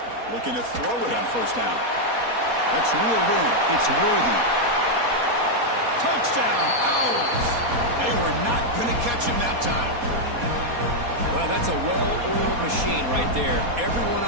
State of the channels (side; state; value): left; late; 4.2 ms